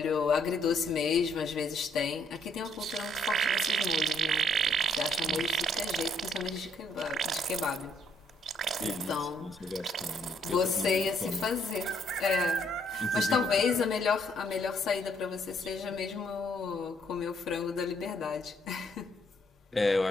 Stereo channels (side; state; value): both; normal; correlation 0.69